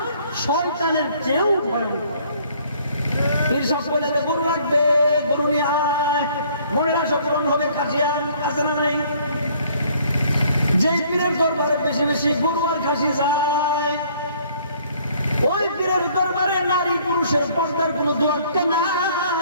শয়তানের চেয়েও ভয়ঙ্কর। পীর সাহেব বলে গরু লাগবে, গরু নিয়ে আয়, মনেরা সকরণ হবে, খাসিয়ান আছে না নাই? যে পীরের দরবারে বেশি বেশি গরু আর খাসি যায়, ওই পীরের দরবারে নারী পুরুষের পর্দার কোন দরকার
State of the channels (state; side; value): inverted; both; correlation -0.59